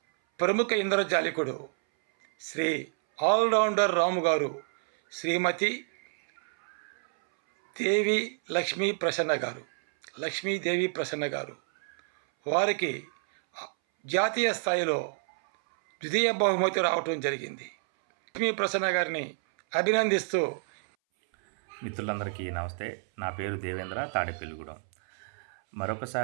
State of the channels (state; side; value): silent; left; 59 dB below the other